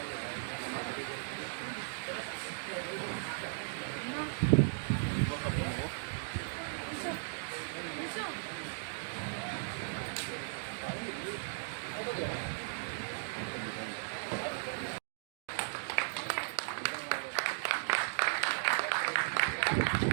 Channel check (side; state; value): left; silent; digital silence